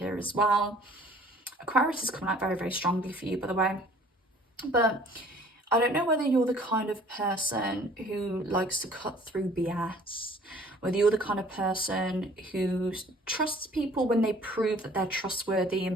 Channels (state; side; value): normal; both; correlation 0.53